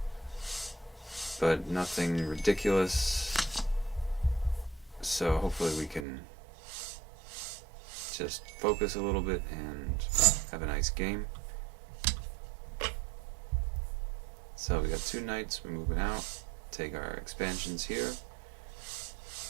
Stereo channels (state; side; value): drops out; left; at 6.1 s